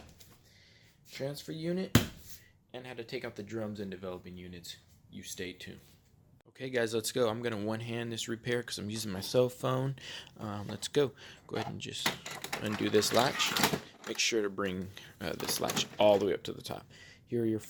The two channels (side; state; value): both; identical; correlation 1.00